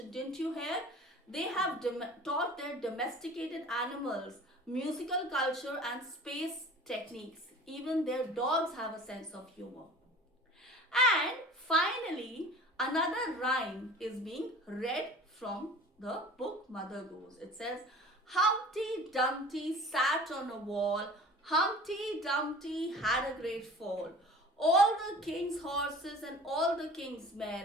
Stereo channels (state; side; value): normal; both; correlation 0.42